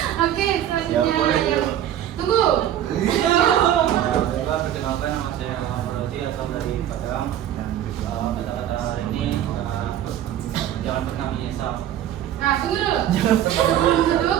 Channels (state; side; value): quieter; left; 11.2 dB